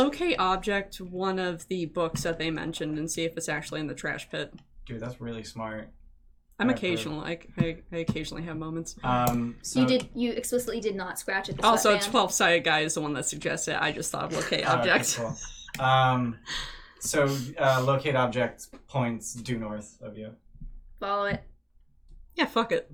object one of the books that they mentioned and see if it's actually in the trash pit. Dude, that's really smart. I'm Right, occasional. I occasionally have moments. So You explicitly did not scratch at the Also, sweatband. 12-sided guy is the one that suggested it. I just thought of locate Oh, okay, object. cool. So locate object points due north of you. Follow it. Yeah, fuck it.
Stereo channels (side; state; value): both; identical; correlation 1.00